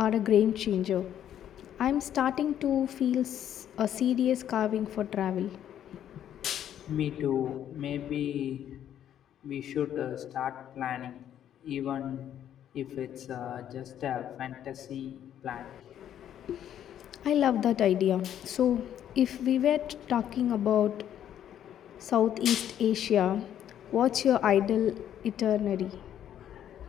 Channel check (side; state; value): right; quieter; 10.4 dB